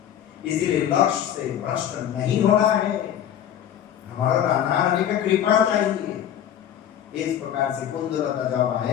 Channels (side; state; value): right; quieter; 10.2 dB